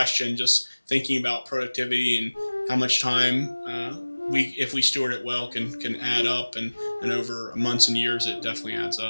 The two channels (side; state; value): both; inverted; correlation -1.00